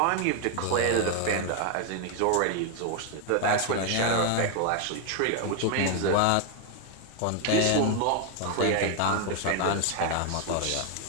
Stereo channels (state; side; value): different; both; correlation 0.01